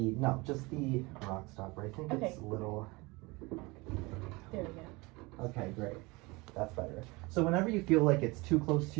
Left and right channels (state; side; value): quieter; left; 24.4 dB